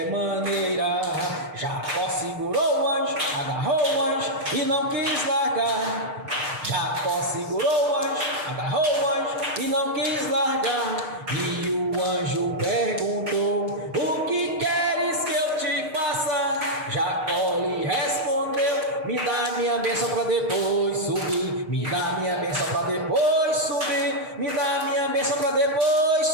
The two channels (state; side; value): late; left; 6.6 ms